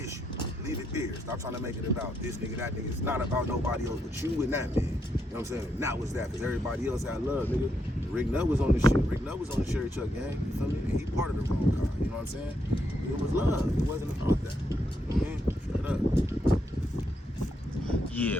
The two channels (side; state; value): both; normal; correlation 0.79